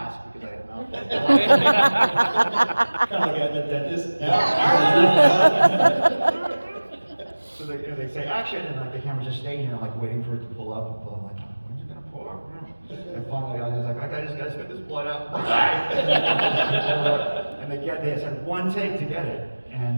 because I had a mouth full of blood. Kind of like at the dentist. So they say action, and like the camera's just staying here, like waiting for it to pull up. I'm like, when's it gonna pull up? And finally, I was like, I just gotta spit this blood out. And they just had one take to get it, and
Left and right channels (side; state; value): both; inverted; correlation -1.00